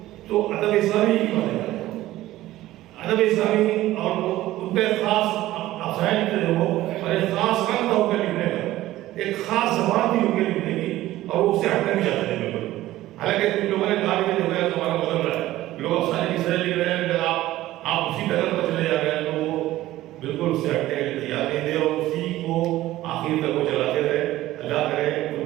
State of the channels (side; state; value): left; quieter; 15.6 dB